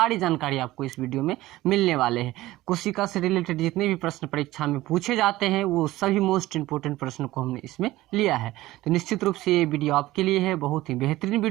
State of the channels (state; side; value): quieter; left; 17.1 dB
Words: जानकारी आपको इस वीडियो में मिलने वाले हैं। कोशिका से रिलेटेड जितने भी प्रश्न परीक्षा में पूछे जाते हैं वो सभी मोस्ट इंपोर्टेंट प्रश्न को हमने इसमें लिया है। तो निश्चित रूप से ये वीडियो आपके लिए है, बहुत ही बेहतरीन